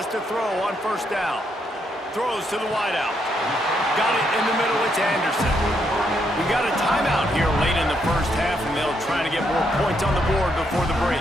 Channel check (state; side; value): normal; both; correlation 0.77